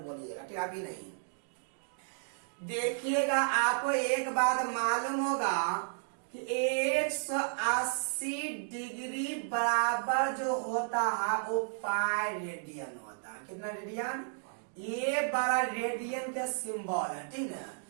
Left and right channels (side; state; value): left; silent; digital silence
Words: ठीक। अभी नहीं देखिएगा, आपको एक बात मालूम होगा कि 180 डिग्री बराबर जो होता है वो पाई रेडियन होता है। कितना रेडियन, ये बड़ा रेडियन का सिंबल है, ठीक है।